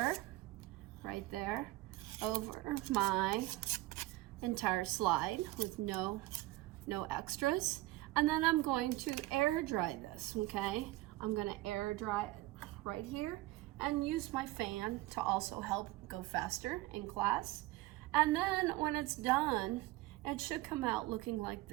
right there over my entire slide with no extras. And then I'm going to air dry this, okay? I'm gonna air dry it right here and use my fan to also help go faster in class. And then when it's done, it should come out looking like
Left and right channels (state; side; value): quieter; left; 18.6 dB